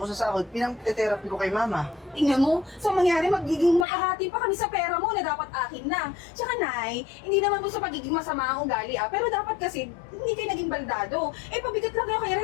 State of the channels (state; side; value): drops out; right; at 3.9 s